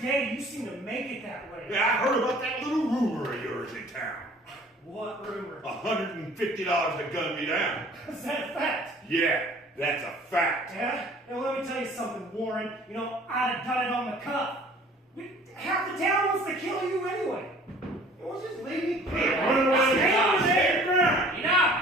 you seem to make it that way. Yeah, I heard about that little rumor of yours in town. What rumor? $150 to gun me down. Is that a fact? Yeah, that's a fact. Yeah? And let me tell you something, Warren. You know, I'd have done it on the cuff. Half the town wants to kill you anyway. Well, just leave me. Run away. Stay over there. Enough!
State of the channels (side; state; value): both; normal; correlation 0.51